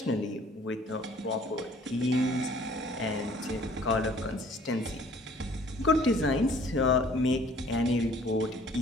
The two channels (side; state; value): both; normal; correlation 0.55